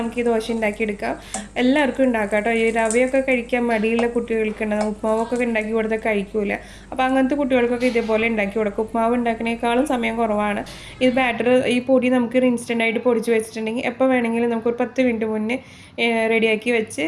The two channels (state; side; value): identical; both; correlation 1.00